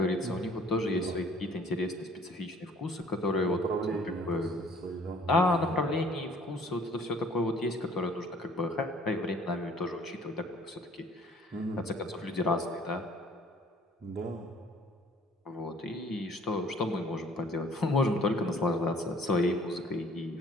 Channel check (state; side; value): normal; both; correlation 0.55